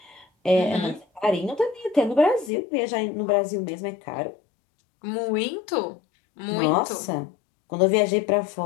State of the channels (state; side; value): drops out; right; at 2.5 s